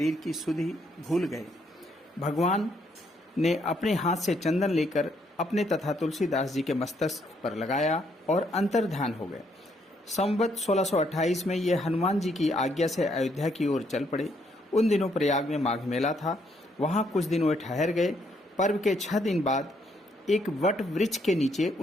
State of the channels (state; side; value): normal; both; correlation 0.72